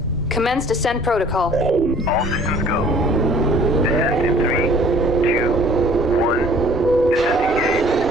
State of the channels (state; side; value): normal; both; correlation 0.53